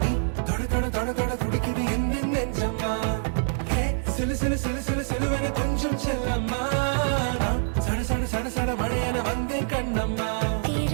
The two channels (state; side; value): silent; left; digital silence